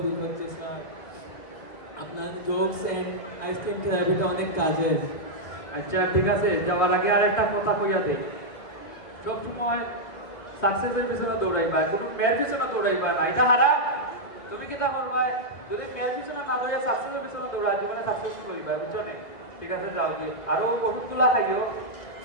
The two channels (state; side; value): late; right; 2.0 ms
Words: ফিল হচ্ছে স্যার। আপনার জোকস এন্ড আইসক্রিম থেরাপিটা অনেক কাজের। আচ্ছা ঠিক আছে যাওয়ার আগে আর একটা কথা কইয়া দে সবসময় সাকসেসের পিছনে দৌড়াইবা কোনো মেয়ের পিছনে দৌড়াইবা না এটা হারাম তুমি কিটা করবা যদি মেয়ের পিছনে না দৌড়াই সাকসেসের পিছনে দৌড়া জীবনে সাকসেসফুল হইবা বুঝছো না ঠিক আছে যাও দি আরো ওষুধগুলা খাইও